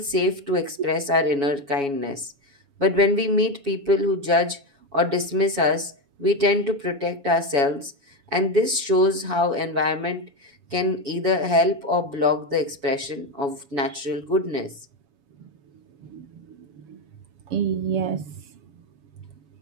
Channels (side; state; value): left; late; 7.1 ms